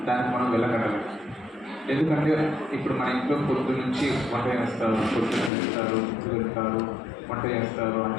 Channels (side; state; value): right; drops out; at 5.5 s